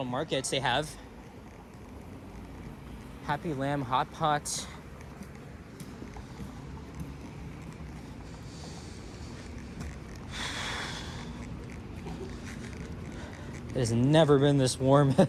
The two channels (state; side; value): identical; both; correlation 1.00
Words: markets they have. Happy Lamb Hot Pot. It has never been this warm